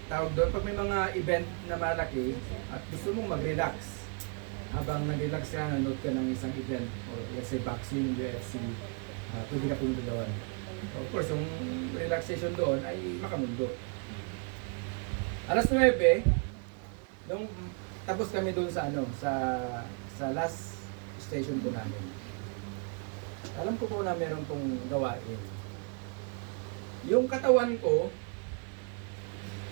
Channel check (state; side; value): quieter; left; 38.9 dB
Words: tawag doon, pag may mga event na malaki at gusto mong mag-relax, habang nag-relax ka, nanood ka ng isang event, or let's say boxing, UFC, pwede ka punta doon. Of course, yung relaxation doon ay makamundo. Alas 9, nung tapos kami doon sa sa last station po namin. Alam ko po na meron pong gawain. Yung katawan ko,